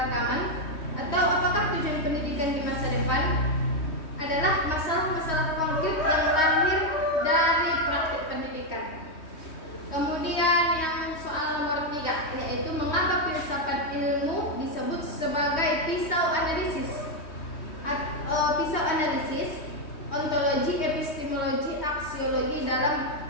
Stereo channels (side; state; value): right; late; 3.2 ms